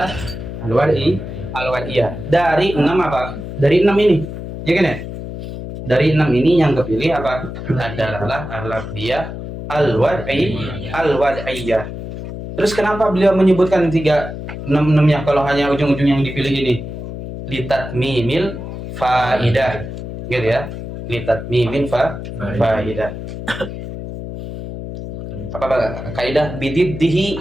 al-wad'iyah. Dari 6 apa? Dari 6 ini. Ya kan ya? Dari 6 ini yang kepilih apa? Ad-dalalah al-lafdhiyah al-wad'iyah. Terus kenapa beliau menyebutkan 6-nya kalau hanya ujung-ujung yang dipilih ini? Litatmimil faidah. Gitu ya. Litatmimil faidah. Apa kaidah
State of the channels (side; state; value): left; noise; hum, 9 dB below the sound